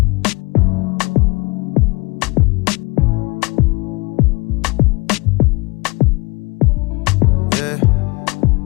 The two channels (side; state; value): right; quieter; 26.0 dB